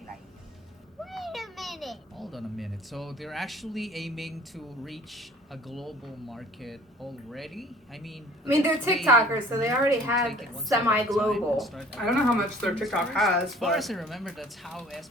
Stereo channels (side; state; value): both; normal; correlation 0.50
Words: Hold on a minute. So they're actually aiming to reach a global market already? I mean, They're that's way TikTokers, so they already to have take it one step at a time and semi-global. start I don't know how much their advertising TikTok first. has, As far but as I remember, that's how